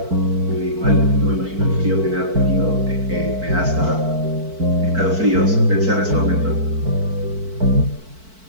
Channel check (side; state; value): left; late; 4.5 ms